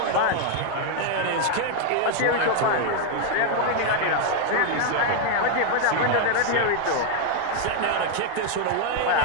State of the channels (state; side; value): different; both; correlation 0.00